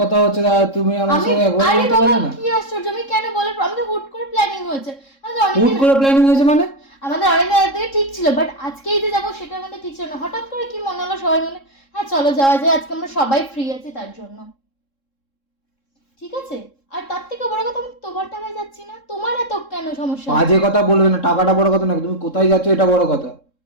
কথা হচ্ছে না, তুমি আমার আমি সঙ্গে একবার আরে বলতে বাবা পারলে না? কি আশ্চর্য, আমি কেন বলে, আমি তো হুট করে প্ল্যানিং হয়েছে। আমাদের হুট অনেকদিন করে প্ল্যানিং হয়েছে মানে? আমাদের অনেকদিন আগে থেকে ঠিক ছিল, বাট আজকেই যে যাবো সেটা আমাদের ঠিক ছিল না। হঠাৎ করে কি মনে হলো সবাই মিলে হ্যাঁ চলো যাওয়া যায়, আজকে আমরা সবাই ফ্রি আছি তার জন্য। ঠিক আছে, আর তার থেকে বড় কথা আমি তোমার টাকায় যাচ্ছি না, তোমার এত কেন সমস্যা? বাজে কথা বলবে না, টাকাটা বড় কথা না, তুমি কোথায় যাচ্ছ এটা বড় কথা।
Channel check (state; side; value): late; right; 3.7 ms